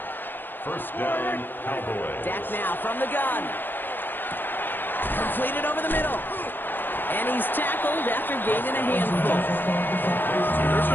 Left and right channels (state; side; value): late; right; 0.094 ms